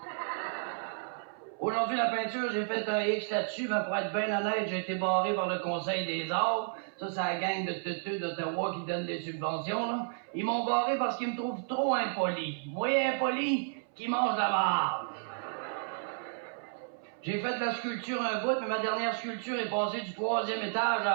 Aujourd'hui, la peinture, j'ai fait un X là-dessus, mais pour être bien honnête, j'ai été barré par le Conseil des arts. Ça, c'est la gang de teuteux d'Ottawa qui donne des subventions, là. Ils m'ont barré parce qu'ils me trouvent trop impoli. Moi, impoli, qui mange la marde. J'ai fait de la sculpture un bout, mais ma dernière sculpture est passée du 3e étage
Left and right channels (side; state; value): left; silent; 56 dB below the other